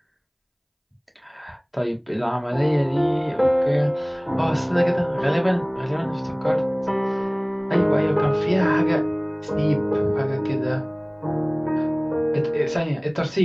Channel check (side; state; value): both; identical; correlation 1.00